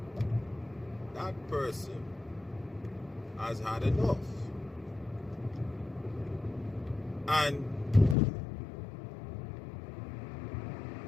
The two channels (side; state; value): right; drops out; at 8.2 s